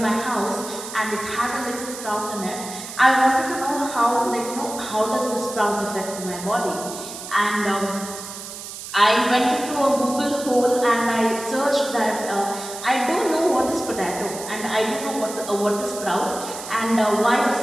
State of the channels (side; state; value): right; noise; hiss, 11 dB below the sound